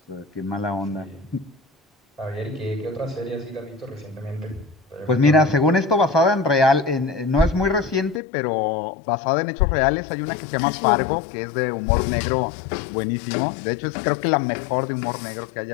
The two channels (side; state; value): right; drops out; at 8.2 s